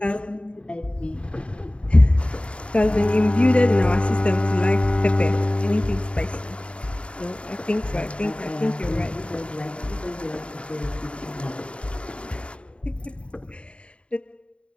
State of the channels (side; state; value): right; late; 0.059 ms